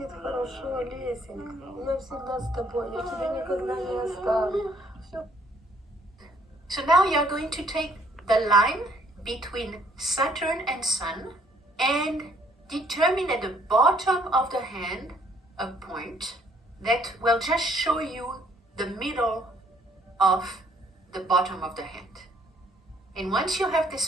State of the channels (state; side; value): normal; both; correlation 0.65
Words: хорошо, Лесенька. Я всегда с тобой, я тебя никогда не оставлю. So now you are going to take the line between Saturn and Sun and determine at the bottom of the hand a point that will just show you the middle of the bottom of the hand. And once you have this